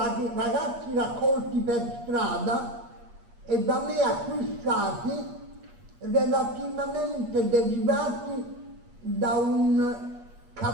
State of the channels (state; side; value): late; left; 8.4 ms